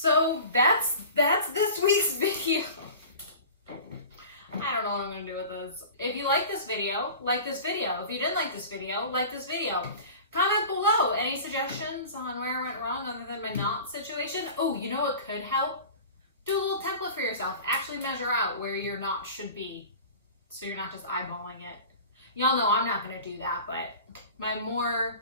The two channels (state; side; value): inverted; both; correlation -0.38